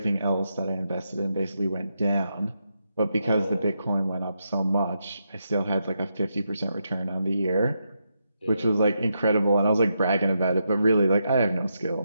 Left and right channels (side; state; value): both; inverted; correlation -0.83